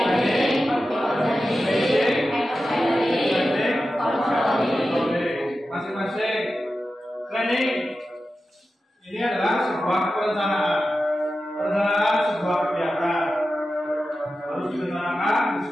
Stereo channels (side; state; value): both; normal; correlation 0.92